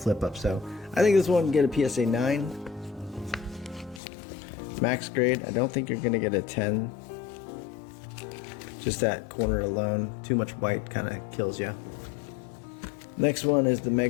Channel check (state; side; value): drops out; right; at 4.0 s